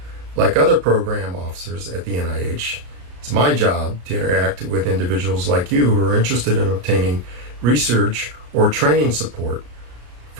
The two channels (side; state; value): left; late; 34 ms